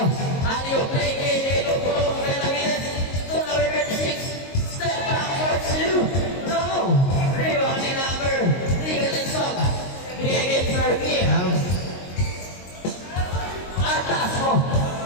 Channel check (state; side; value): late; right; 22 ms